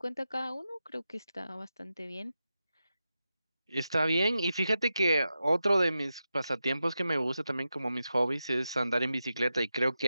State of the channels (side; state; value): both; inverted; correlation -0.90